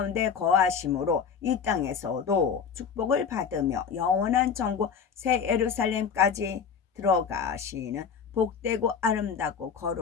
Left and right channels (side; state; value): right; quieter; 6.6 dB